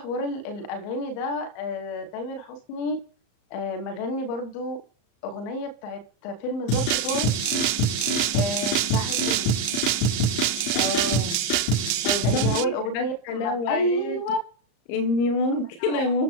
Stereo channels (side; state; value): right; late; 34 ms